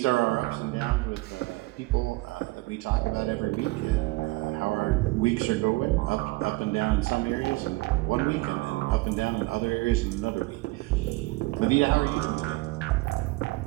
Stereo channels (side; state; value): left; quieter; 22.1 dB